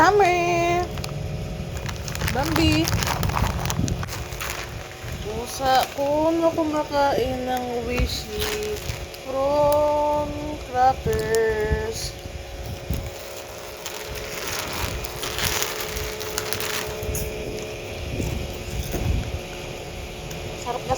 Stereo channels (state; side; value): identical; both; correlation 1.00